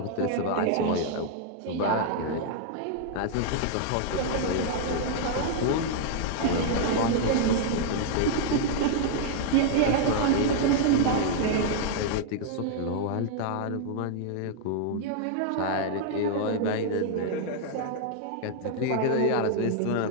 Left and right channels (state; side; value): different; both; correlation 0.00